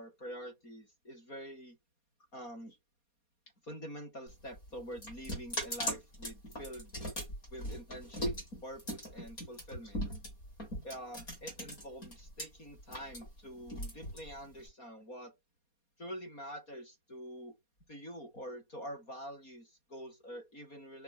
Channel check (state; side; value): late; right; 4.2 ms